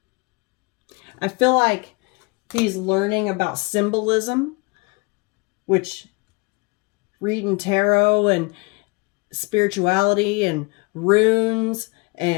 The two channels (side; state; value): right; quieter; 27.8 dB